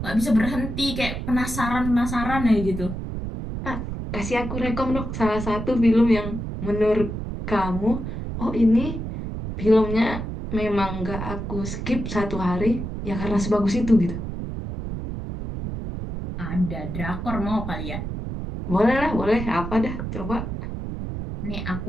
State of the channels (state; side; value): noise; right; rumble, 5 dB below the sound